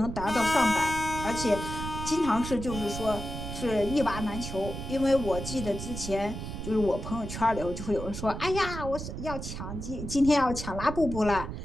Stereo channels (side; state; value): right; noise; rumble, 7 dB below the sound